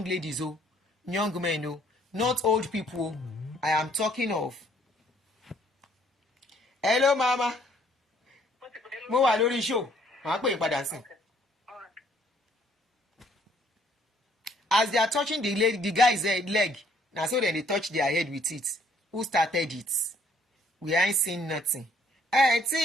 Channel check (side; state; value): both; normal; correlation 0.63